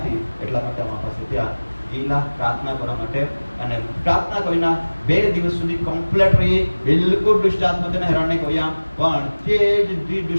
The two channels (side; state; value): both; inverted; correlation -1.00